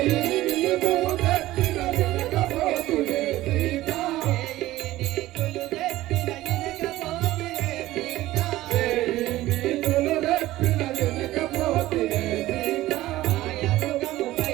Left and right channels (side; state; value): left; quieter; 16.3 dB